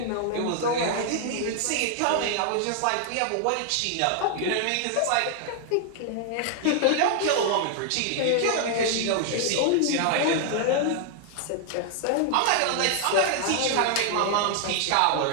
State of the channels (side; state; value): both; different; correlation 0.00